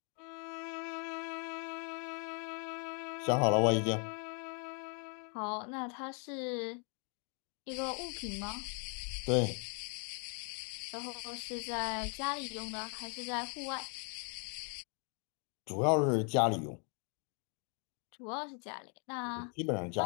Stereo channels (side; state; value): right; quieter; 38.8 dB